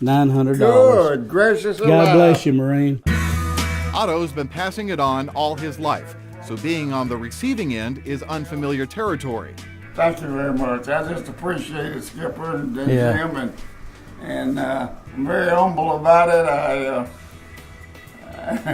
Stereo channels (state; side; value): identical; both; correlation 1.00